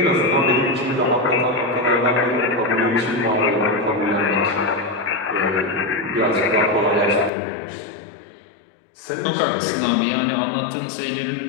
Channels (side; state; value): right; drops out; at 7.3 s